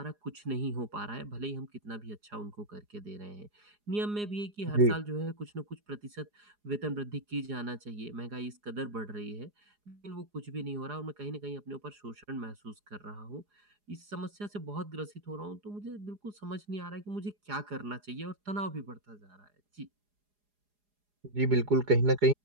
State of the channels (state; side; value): late; left; 4.8 ms